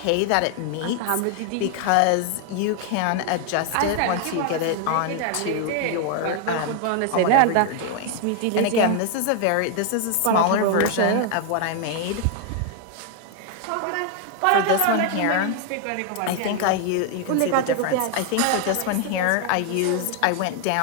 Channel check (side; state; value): both; different; correlation 0.00